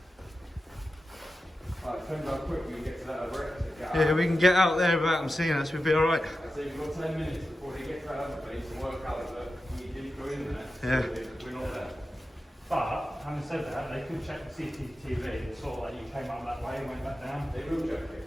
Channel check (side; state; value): both; normal; correlation 0.92